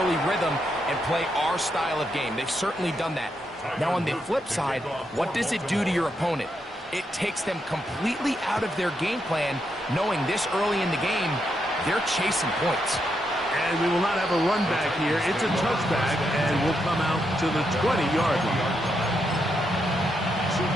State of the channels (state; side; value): normal; both; correlation 0.81